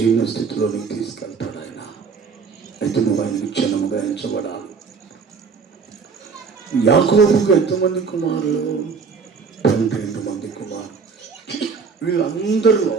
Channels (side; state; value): left; quieter; 5.3 dB